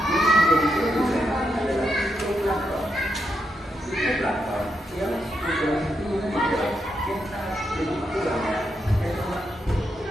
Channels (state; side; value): normal; both; correlation 0.82